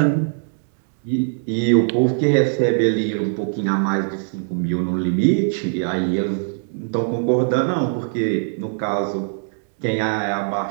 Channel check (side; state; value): left; silent; digital silence